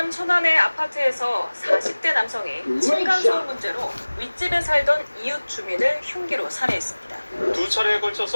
천안의 아파트에서 40대 남성이 층간소음 문제로 윗집에 살던 이웃 주민을 흉기로 살해했습니다. 두 차례에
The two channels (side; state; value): both; inverted; correlation -1.00